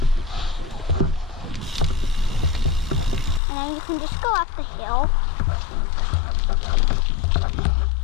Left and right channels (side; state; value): right; drops out; at 3.4 s